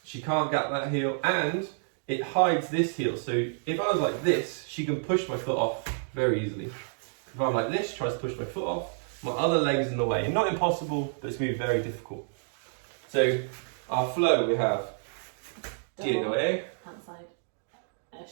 she can't get that heel, and it hides this heel. So if I was like this, she can push my foot off very easily. If I'm like this, she tries to push my foot off, my other leg's in the way. Not impossible, but it's going to be very difficult. So our flow, we have DOA, outside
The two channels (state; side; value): silent; left; digital silence